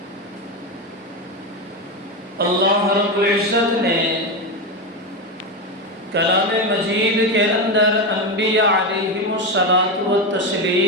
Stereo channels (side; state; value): both; normal; correlation 0.14